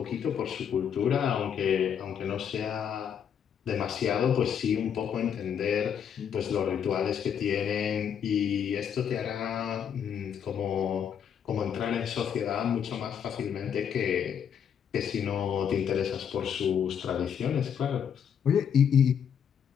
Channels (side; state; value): right; quieter; 8.1 dB